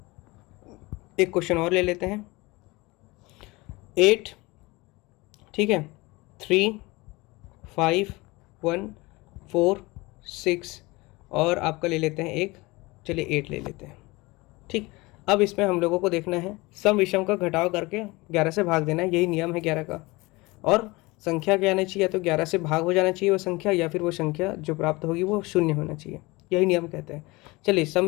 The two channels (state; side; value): quieter; right; 22.9 dB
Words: एक क्वेश्चन और ले लेते हैं। 8, ठीक है, 3 5 1 4 6 और आपका ले लेते हैं एक, चलिए 8 ले लेते हैं, ठीक। अब इसमें हम लोगों को देखना है सम विषम का घटाव करके 11 से भाग देना है, यही नियम है 11 का। और संख्या क्या आना चाहिए? या तो 11 से भाग हो जाना चाहिए वो संख्या, या फिर वो संख्या जो प्राप्त होगी वो 0 होना चाहिए, यही नियम कहते हैं। चलिए सम